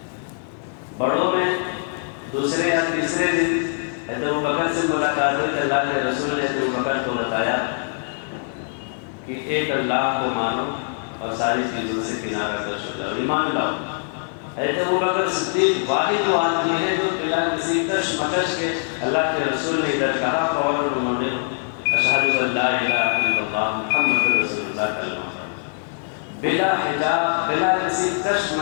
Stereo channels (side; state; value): right; silent; 57 dB below the other